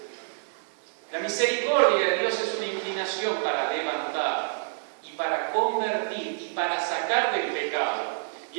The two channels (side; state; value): left; silent; digital silence